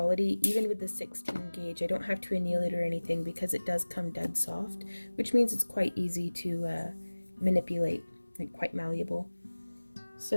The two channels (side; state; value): both; inverted; correlation -1.00